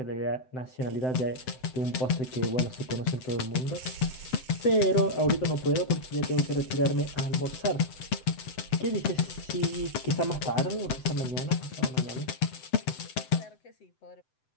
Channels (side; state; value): right; late; 7.8 ms